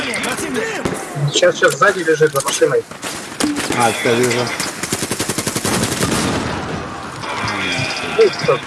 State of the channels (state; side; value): identical; both; correlation 1.00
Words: противник! Сейчас сзади лежит за машиной. А, все, вижу. Ой, как